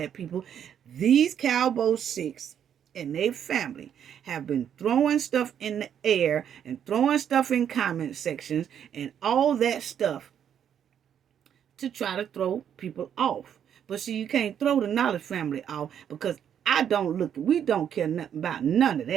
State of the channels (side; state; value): left; quieter; 9.0 dB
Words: people. These Cabo 6 and their family have been throwing stuff in the air and throwing stuff in comment sections and all that stuff to try to throw people off. But see, you can't throw the Knowledge family off, because we don't care nothing about none of